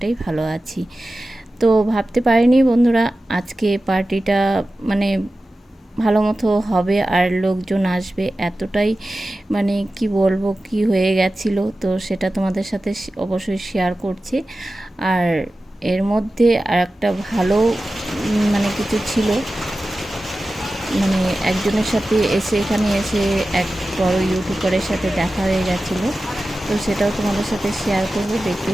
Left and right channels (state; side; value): normal; both; correlation 0.95